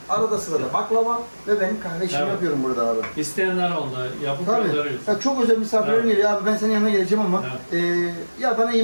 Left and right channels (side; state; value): both; inverted; correlation -1.00